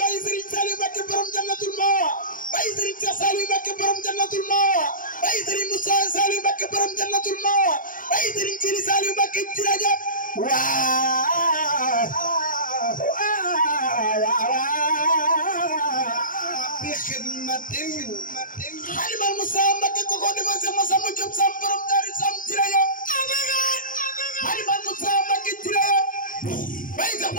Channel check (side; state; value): right; late; 0.39 ms